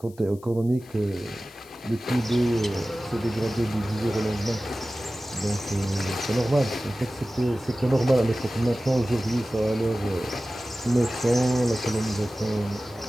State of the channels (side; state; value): left; noise; hiss, 26 dB below the sound